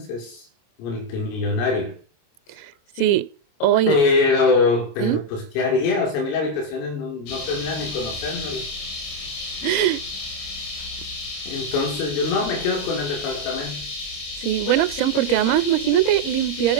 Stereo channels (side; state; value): right; late; 26 ms